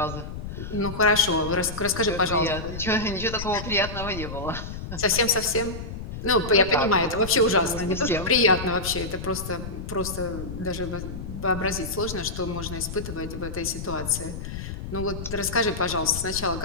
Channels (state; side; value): noise; left; rumble, 8 dB below the sound